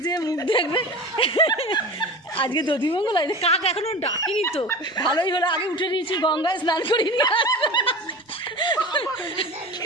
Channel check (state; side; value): normal; both; correlation 0.32